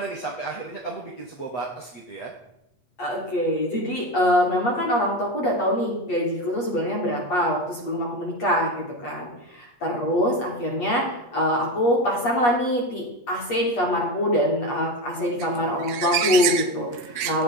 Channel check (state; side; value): late; right; 7.8 ms